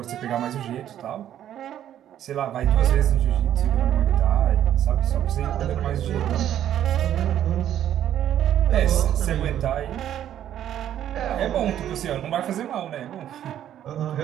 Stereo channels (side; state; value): left; quieter; 11.0 dB